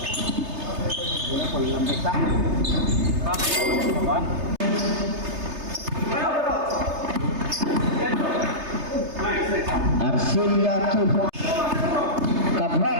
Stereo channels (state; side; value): late; left; 3.3 ms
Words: Arcilia 2 points.